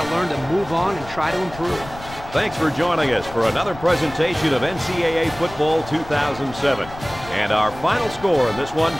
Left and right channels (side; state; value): left; noise; rumble, 16 dB below the sound